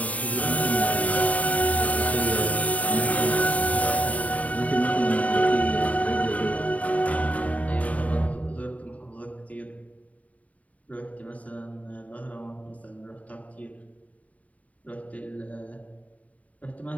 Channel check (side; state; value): right; late; 0.070 ms